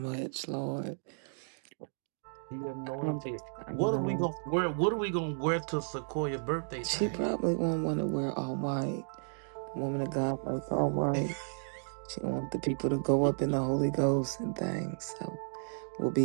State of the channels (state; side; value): silent; left; digital silence